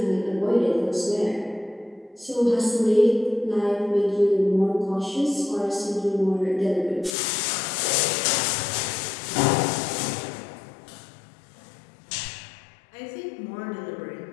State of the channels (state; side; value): drops out; right; at 7.1 s